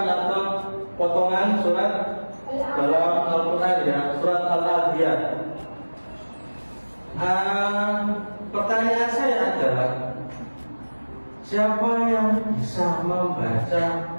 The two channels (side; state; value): both; inverted; correlation -1.00